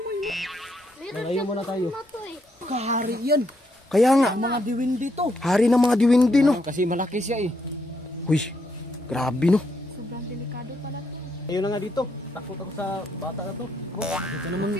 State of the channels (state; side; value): normal; both; correlation 0.76